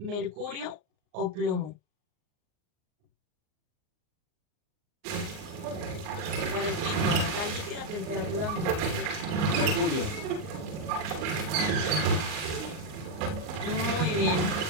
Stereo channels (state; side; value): late; left; 39 ms